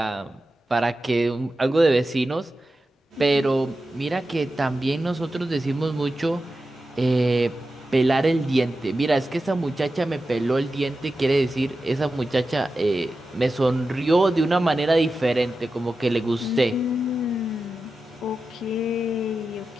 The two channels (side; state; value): both; normal; correlation 0.92